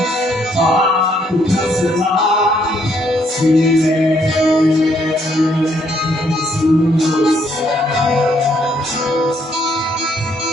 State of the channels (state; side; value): normal; both; correlation 0.70